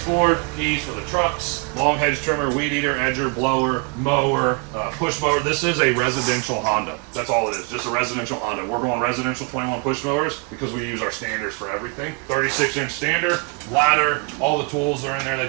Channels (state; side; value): quieter; left; 32.8 dB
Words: board, keys for the trucks, long hedge trimmer, weed eater, edger, blower, mower, push mower. This is a residential Honda. That's all it is, just a residential Honda. We're going residential 21 push mowers because we use our standards for everything. 36-inch stander, ladder, all the tools are in there